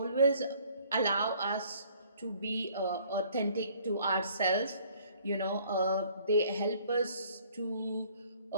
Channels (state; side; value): inverted; both; correlation -0.58